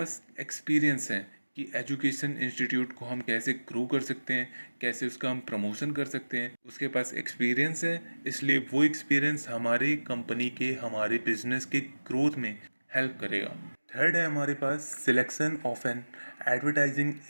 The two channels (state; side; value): inverted; both; correlation -1.00